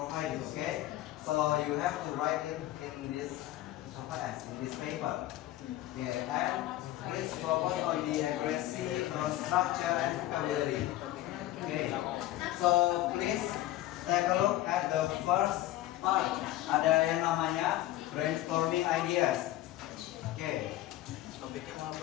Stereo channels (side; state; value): right; quieter; 15.0 dB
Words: Okay, so you have to write it in this paper. Okay, and please focus on the accuracy, structure, and vocabulary. Okay, so please take a look at the first part. Ada yang namanya brainstorming ideas. Okay.